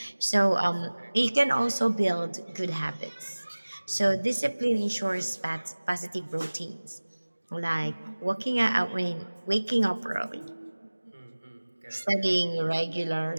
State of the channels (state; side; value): inverted; both; correlation -1.00